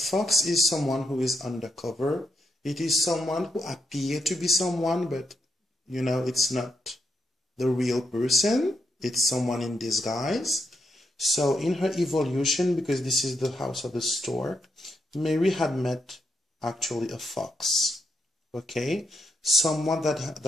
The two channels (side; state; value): both; normal; correlation 0.81